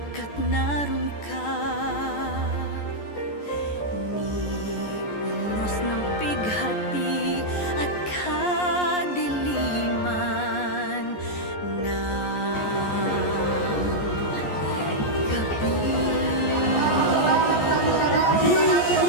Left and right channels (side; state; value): right; late; 14 ms